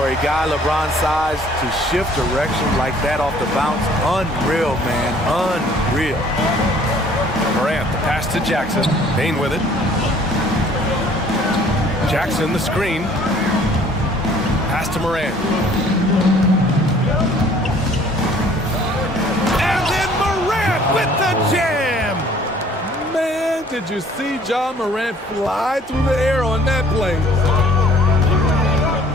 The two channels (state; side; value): normal; both; correlation 0.56